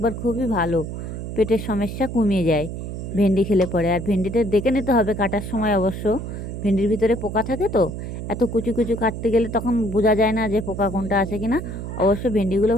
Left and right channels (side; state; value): right; noise; hum, 7 dB below the sound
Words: খুবই ভালো, পেটের সমস্যা কমিয়ে যায় ভেন্ডি খেলে পরে। আর ভেন্ডিটা দেখে নিতে হবে কাটার সময়, অবশ্য ভেন্ডির ভিতরে পোকা থাকে তো, এত কুচু কুচু কাটতে গেলে তখন বোঝা যায় না যে পোকা কোনটা আছে কিনা। অবশ্য ভেন্ডিগুলো